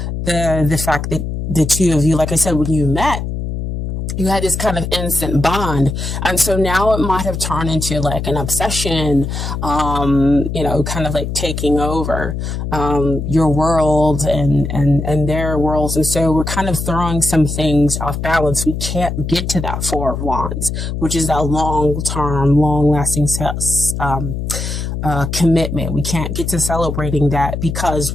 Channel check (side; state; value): left; noise; hum, 4 dB below the sound